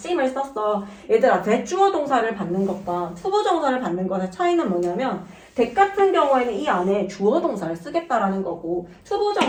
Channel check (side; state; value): both; identical; correlation 1.00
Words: 썼어. 얘들아 대주어 동사를 받는 것과 투부정사를 받는 것의 차이는 뭐냐면 대 같은 경우에는 이 안에 주어 동사를 쓰겠다라는 거고